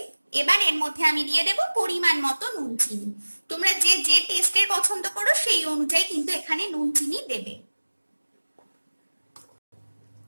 এবার এর মধ্যে আমি দিয়ে দেব পরিমাণ মতো নুন চিনি। তোমরা যে যে টেস্টের পছন্দ করো সেই অনুযায়ী কিন্তু এখানে নুন চিনি দেবে।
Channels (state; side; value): inverted; both; correlation -1.00